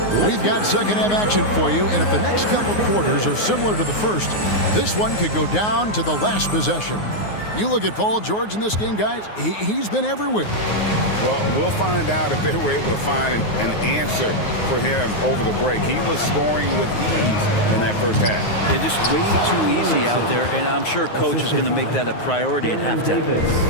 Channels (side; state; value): right; late; 9.5 ms